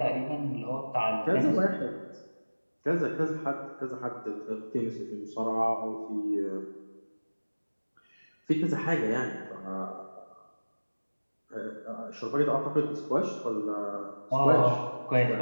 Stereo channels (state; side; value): inverted; both; correlation -1.00